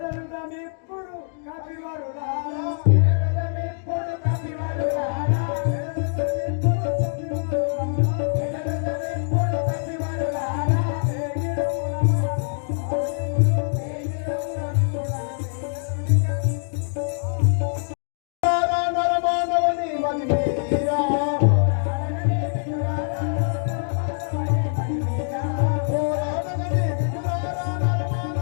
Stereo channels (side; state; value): right; silent; digital silence